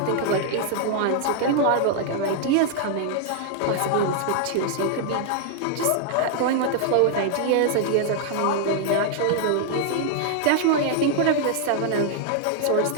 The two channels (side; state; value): both; different; correlation 0.00